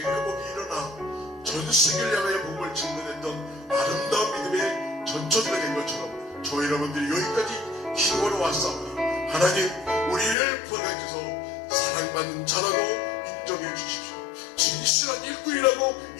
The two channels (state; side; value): drops out; right; at 10.4 s